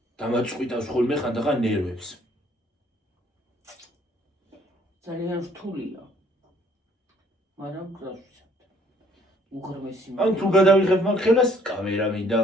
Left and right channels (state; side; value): normal; both; correlation 0.62